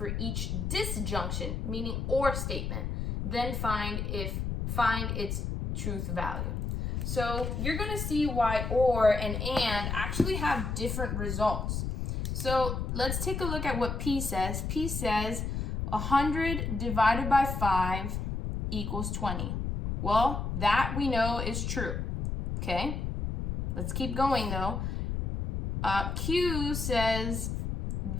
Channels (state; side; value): noise; left; rumble, 2 dB below the sound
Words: each disjunction, meaning or statement. Then find its truth value. So you're going to see why or and actually have different results. So let's take a look at what P says. P says 100 divided by 5 equals 20. Well, that we know is true. Okay? Let's keep going though. Q says